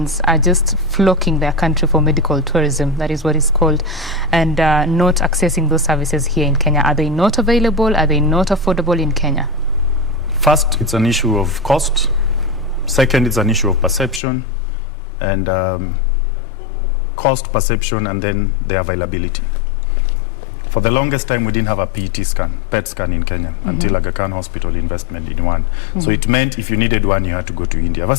are just flocking their country for medical tourism, that is what it's called, and not accessing those services here in Kenya? Are they not available? Are they not affordable in Kenya? First, it's an issue of cost. Second, it's an issue of perception, and cost, perception, and then the availability. For the longest time, we didn't have a PET scan in Kenya until Aga Khan Hospital investment in one. So it meant if you needed one, you had to go to India.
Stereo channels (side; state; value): right; drops out; at 14.2 s